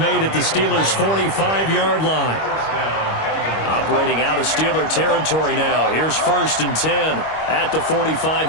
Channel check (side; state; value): right; late; 25 ms